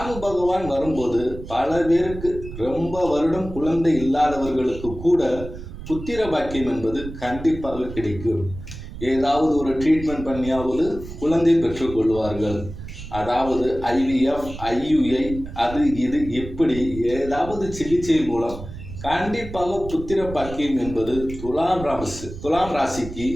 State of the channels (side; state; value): right; noise; rumble, 11 dB below the sound